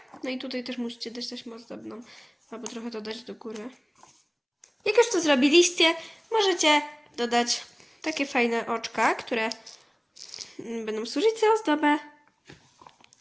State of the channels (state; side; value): identical; both; correlation 1.00